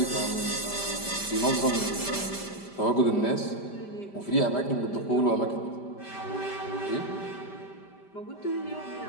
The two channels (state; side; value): late; right; 5.1 ms